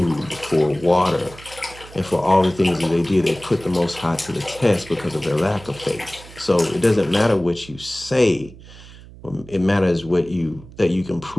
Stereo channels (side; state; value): right; noise; hum, 19 dB below the sound